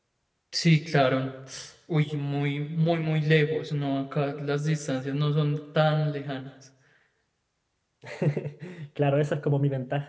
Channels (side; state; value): both; identical; correlation 1.00